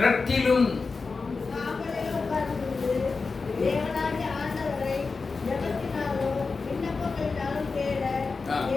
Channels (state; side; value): quieter; right; 4.4 dB